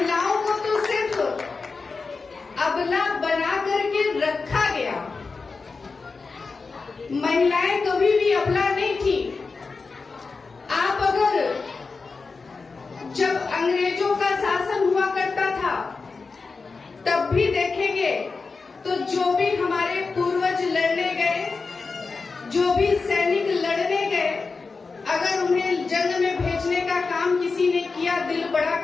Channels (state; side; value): quieter; right; 4.4 dB